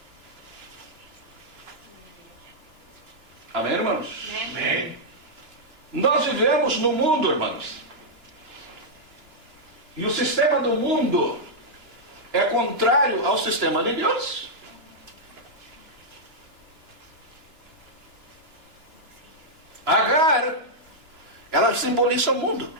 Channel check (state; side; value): late; left; 2.9 ms